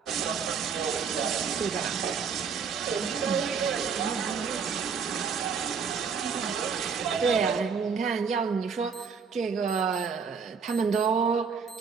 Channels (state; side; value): quieter; left; 6.0 dB